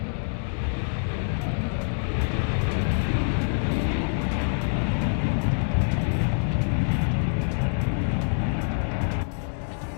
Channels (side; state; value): right; silent; digital silence